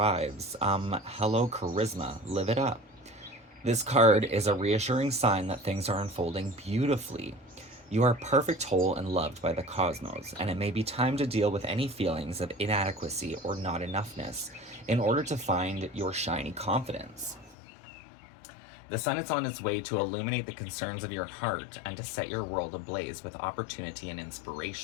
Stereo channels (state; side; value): drops out; right; at 17.6 s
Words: charisma. Live it up. This card is a reassuring sign that things are unfolding beautifully. You are perfect, whole, and loved by the cosmos, and it may be time to deal with any feelings of inadequacy or not enoughness in order to find your shiny confidence. The sun is on its way to illuminate the concerns of your heart and to set your world ablaze with opportunity and